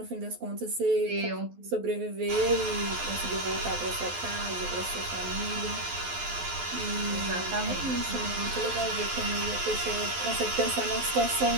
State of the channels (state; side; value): late; left; 12 ms